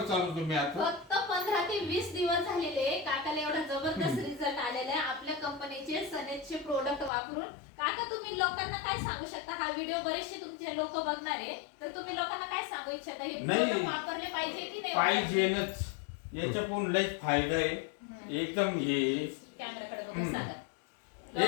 चालू तुम्ही आता। फक्त 15 ते 20 दिवस झालेले काकाला एवढा जबरदस्त रिझल्ट आलेला आहे आपल्या कंपनीचे सनेजचे प्रोडक्ट वापरून। काका तुम्ही लोकांना काय सांगू शकता? हा व्हिडिओ बरेचसे तुमचे लोक बघणार आहे, तर तुम्ही लोकांना काय सांगू इच्छिता? हे प्रोडक्ट वापरले पाहिजे की नाही? पाहिजेच, याच्यातून लय फायदा आहे एकदम। हे कॅमेराकडे बघून सांगा।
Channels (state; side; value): drops out; right; at 7.1 s